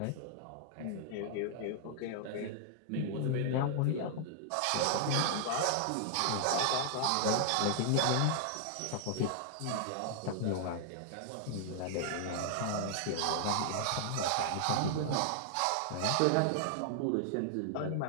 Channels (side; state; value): both; different; correlation -0.01